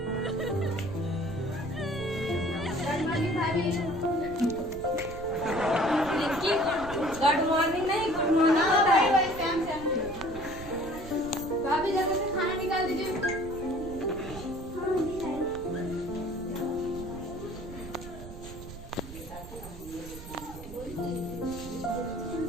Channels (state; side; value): noise; right; rumble, 13 dB below the sound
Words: गुड मॉर्निंग नहीं गुड मॉर्निंग होता है। भाभी जल्दी से खाना निकाल दीजिए।